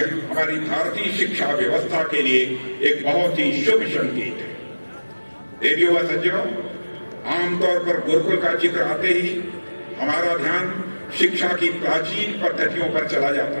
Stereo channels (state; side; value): inverted; both; correlation -1.00